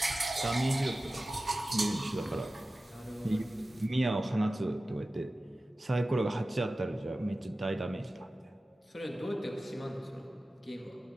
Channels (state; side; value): normal; both; correlation 0.96